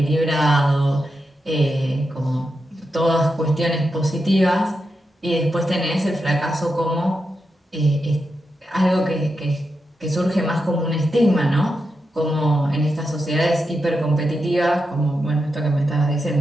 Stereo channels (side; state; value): both; normal; correlation 0.87